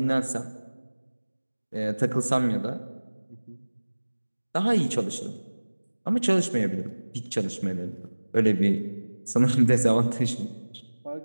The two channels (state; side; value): inverted; both; correlation -1.00